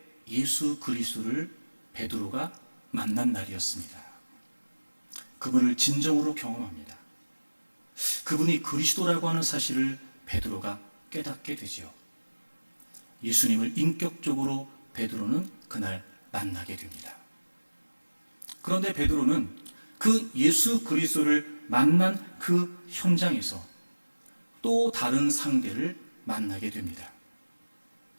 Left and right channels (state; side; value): inverted; both; correlation -1.00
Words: 예수 그리스도를 베드로가 만난 날이었습니다. 그분을 진정으로 경험합니다. 그분이 그리스도라고 하는 사실을 베드로가 깨닫게 되죠. 예수님을 인격적으로 베드로는 그날 만나게 됩니다. 그런데 베드로는 그 예수 그리스도를 만난 그 현장에서 또 다른 상대를 만나게 됩니다.